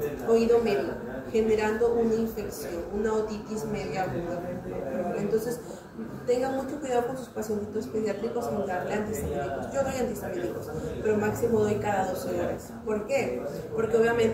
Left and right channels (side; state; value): both; identical; correlation 1.00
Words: oído medio, generando una infección, una otitis media aguda. Entonces, tengan mucho cuidado con sus pacientitos pediátricos en darle antihistamínicos. Yo doy antihistamínicos, pero máximo doy cada 12 horas. ¿Por qué? Porque